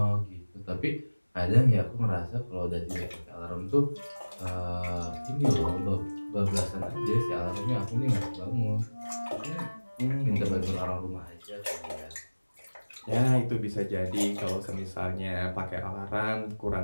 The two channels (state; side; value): inverted; both; correlation -1.00